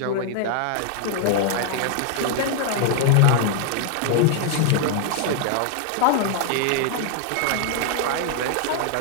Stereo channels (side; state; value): both; different; correlation 0.00